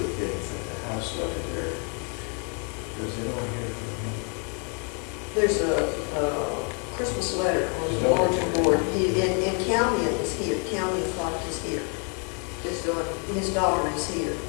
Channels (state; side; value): quieter; right; 38.6 dB